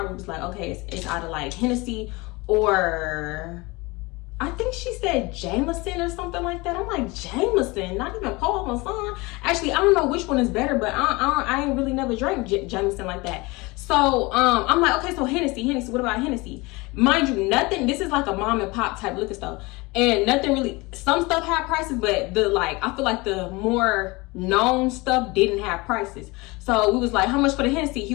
we was like, okay, it's either like Hennessy or, I think she said Jameson or something like that. I'm like, Jameson? Not even Paul Masson? Actually, I don't know which one is better, but I ain't really never drank Jameson like that. So I'm like, okay, so Hennessy. What about Hennessy? Mind you, nothing. This is like a mom and pop type liquor store, and nothing really. Some stuff had prices, but I feel like the more known stuff didn't have prices. So we was like, how much for the Hennessy? He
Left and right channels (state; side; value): quieter; right; 24.2 dB